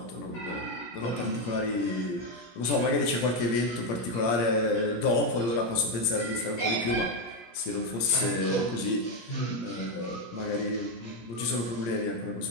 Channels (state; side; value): late; right; 17 ms